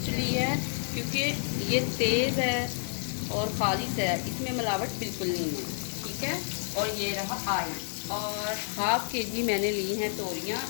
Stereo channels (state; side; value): silent; right; digital silence